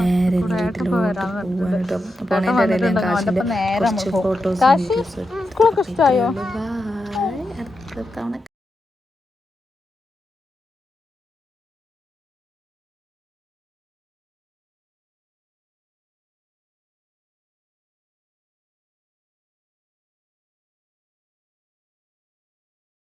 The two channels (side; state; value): both; normal; correlation 0.87